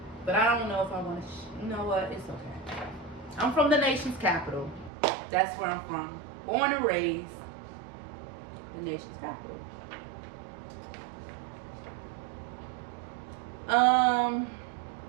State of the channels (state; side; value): drops out; left; at 4.9 s